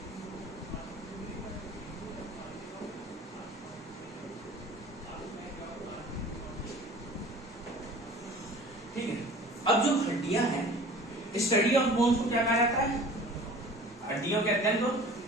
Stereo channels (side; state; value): both; normal; correlation 0.44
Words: ठीक है। अब जो हड्डियां हैं, स्टडी ऑफ बोन्स को क्या कहा जाता है? हड्डियों के अध्ययन को